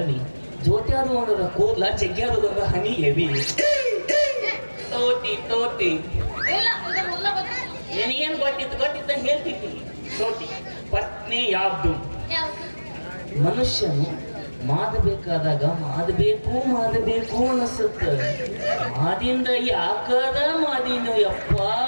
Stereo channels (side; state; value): both; inverted; correlation -1.00